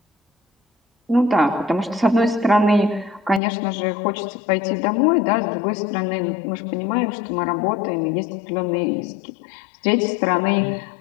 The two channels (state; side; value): drops out; right; at 3.4 s